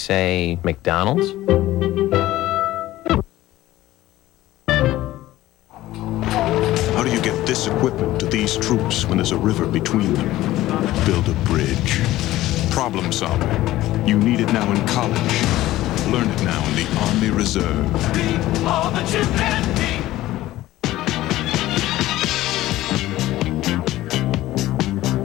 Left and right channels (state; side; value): quieter; right; 15.8 dB